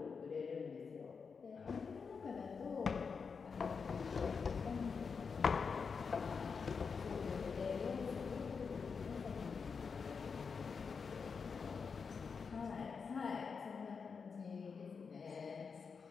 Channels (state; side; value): quieter; right; 5.5 dB